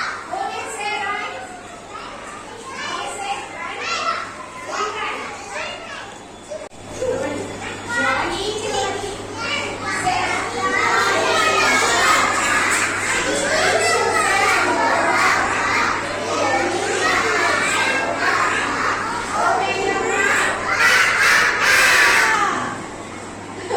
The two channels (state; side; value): identical; both; correlation 1.00